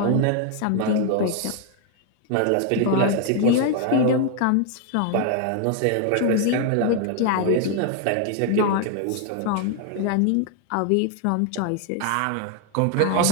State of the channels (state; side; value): different; both; correlation 0.01